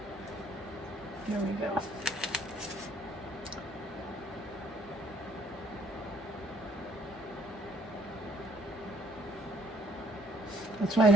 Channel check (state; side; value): normal; both; correlation 0.64